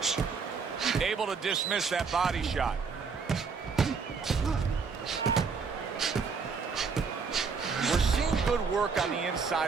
Able to dismiss that body shot. We're seeing good work on the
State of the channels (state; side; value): quieter; left; 5.3 dB